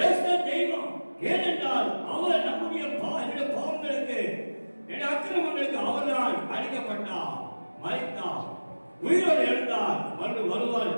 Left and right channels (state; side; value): inverted; both; correlation -1.00